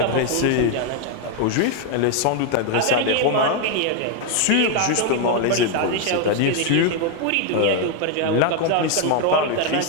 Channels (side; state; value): both; different; correlation 0.01